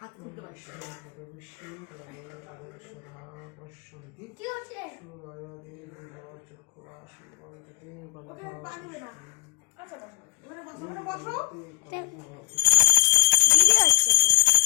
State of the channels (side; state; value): right; quieter; 30.9 dB